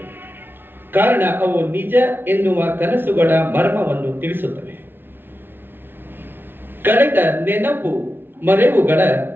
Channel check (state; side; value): late; left; 0.10 ms